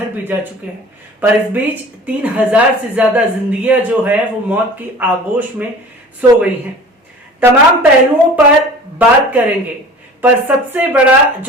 भी जा चुके हैं। पर इस बीच 3,000 से ज्यादा जिंदगियां जो है वो मौत की आगोश में सो गई हैं। तमाम पहलुओं पर बात करेंगे, पर सबसे बड़ा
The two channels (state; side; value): normal; both; correlation 0.42